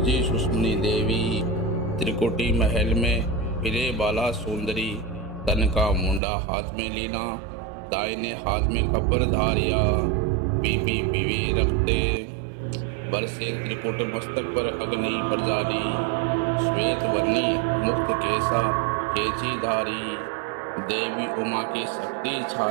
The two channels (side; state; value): left; drops out; at 6.2 s